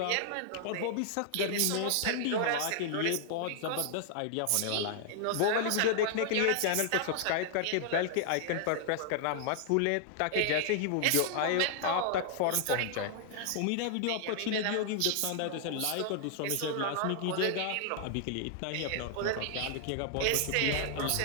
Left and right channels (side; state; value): both; different; correlation -0.01